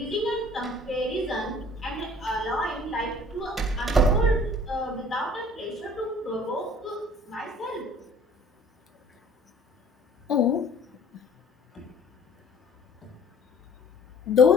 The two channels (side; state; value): both; normal; correlation 0.52